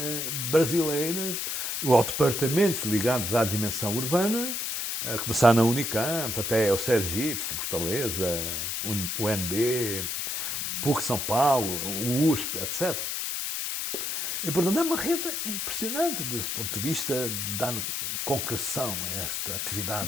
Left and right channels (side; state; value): left; noise; hiss, 2 dB below the sound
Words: brasileiras, ou departamentos ligados à dimensão urbana, a começar na Unicamp, até o Sergipe, Fortaleza, o UNB, PUC São Paulo, o USP, etc. E, portanto, é uma rede impressionante desse ponto de vista de dar concreção a esta